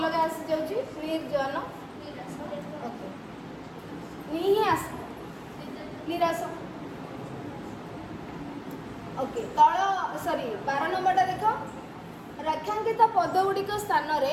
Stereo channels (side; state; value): both; identical; correlation 1.00